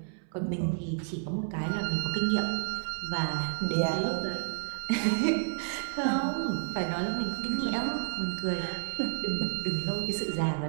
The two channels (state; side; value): silent; left; 57 dB below the other